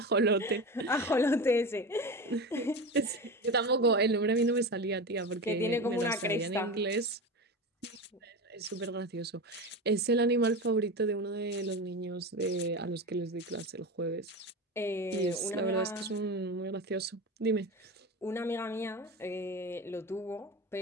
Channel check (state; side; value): normal; both; correlation 0.25